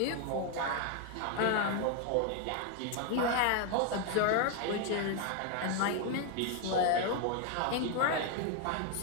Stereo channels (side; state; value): both; different; correlation 0.01